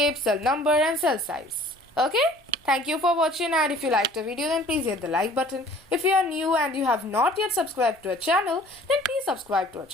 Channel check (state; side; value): normal; both; correlation 0.51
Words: cell number and cell size. Okay? Thank you for watching, and if you liked the video then please hit the like button. If you are new and you have not yet subscribed to our channel, then please subscribe to our